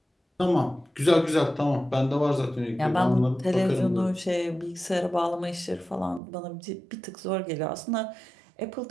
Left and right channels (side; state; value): left; drops out; at 6.2 s